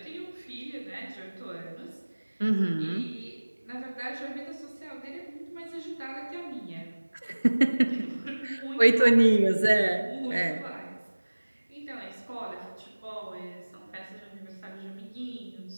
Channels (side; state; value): both; inverted; correlation -1.00